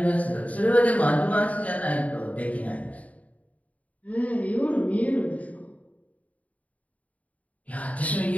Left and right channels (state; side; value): late; right; 0.070 ms